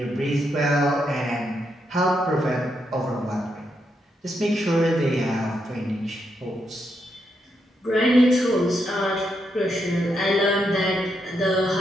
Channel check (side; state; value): both; normal; correlation 0.81